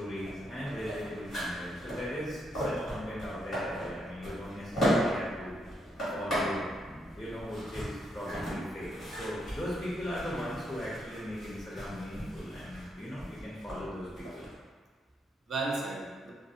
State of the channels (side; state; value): both; normal; correlation 0.77